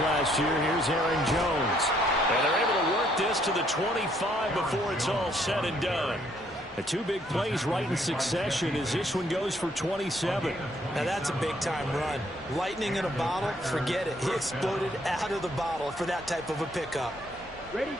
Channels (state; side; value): normal; both; correlation 0.68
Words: year. Here's Aaron Jones. And they're able to work this to the 25 before it's all said and done. The 2 big plays right in succession as this one goes for 27. Now that's a big-time run. Lightning in a bottle, forget it. He exploded out of the bottle for that type of a pickup. Ready,